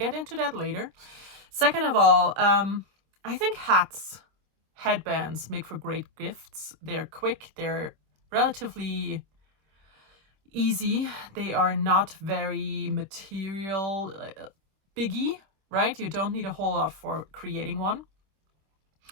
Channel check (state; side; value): late; left; 26 ms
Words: into that later. Second of all, I think headbands make for great gifts. They're quick, they're relatively easy. They are not very material biggie, right? You don't need a whole lot for creating one.